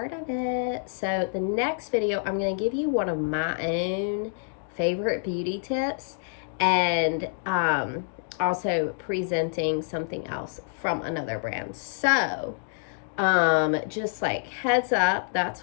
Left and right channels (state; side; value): silent; right; digital silence